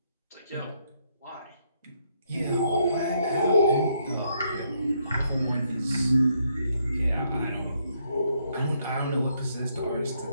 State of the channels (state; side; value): inverted; both; correlation -0.74